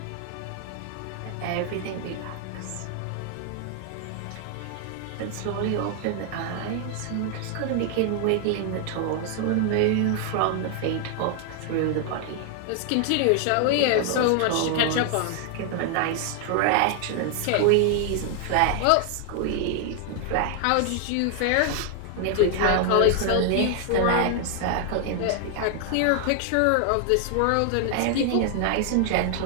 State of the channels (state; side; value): different; both; correlation 0.00